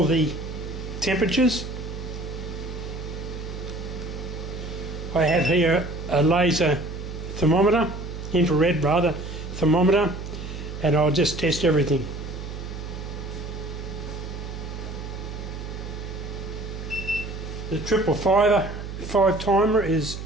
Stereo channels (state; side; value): noise; right; hum, 8 dB below the sound